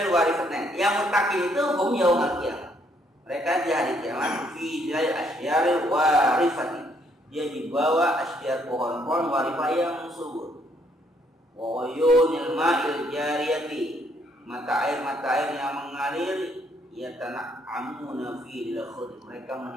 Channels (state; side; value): normal; both; correlation 0.69